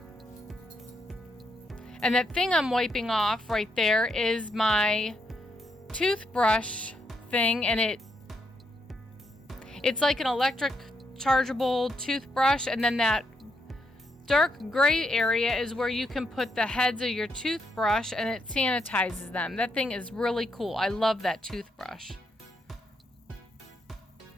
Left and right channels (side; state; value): both; normal; correlation 0.79